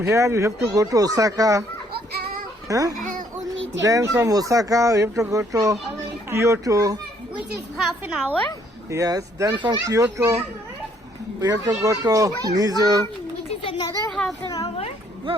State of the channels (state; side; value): normal; both; correlation 0.65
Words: here we have to go to Osaka. Huh? Only 10 Then from Osaka we have to go to Kyoto. which is half an hour. Yes. Then from Kyoto we have to go to Nizu. Which is another half an hour. No,